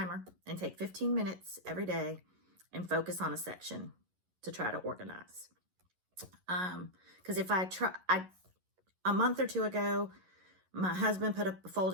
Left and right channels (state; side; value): late; left; 11 ms